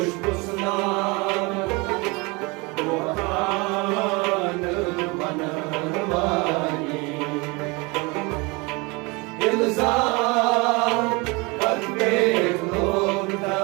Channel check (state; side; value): quieter; left; 26.8 dB